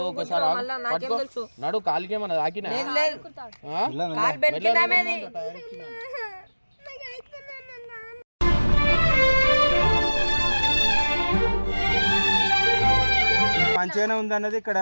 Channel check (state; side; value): inverted; both; correlation -1.00